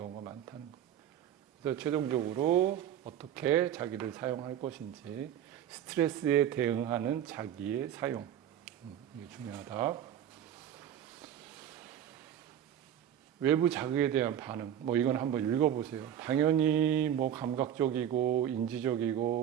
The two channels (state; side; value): quieter; left; 10.2 dB